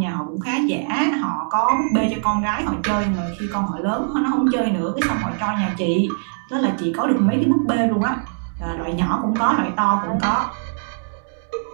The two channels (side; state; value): left; silent; digital silence